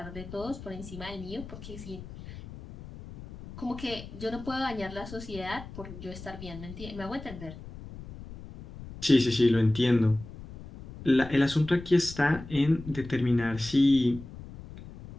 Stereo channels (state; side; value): noise; left; rumble, 14 dB below the sound